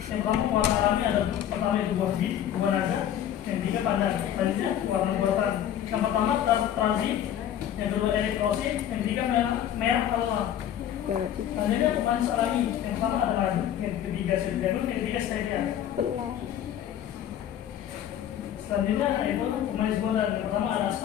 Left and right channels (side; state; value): right; quieter; 10.6 dB